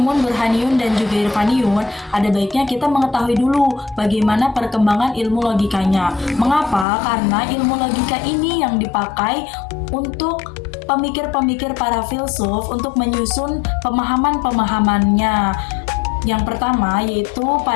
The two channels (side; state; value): right; drops out; at 6.9 s